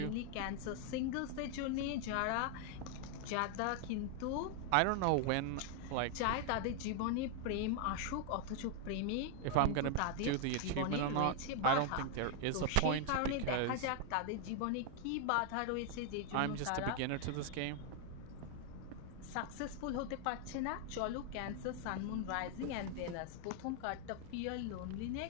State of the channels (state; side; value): different; both; correlation 0.00